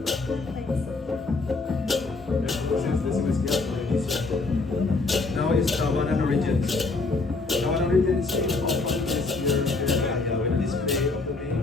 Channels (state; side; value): quieter; right; 3.7 dB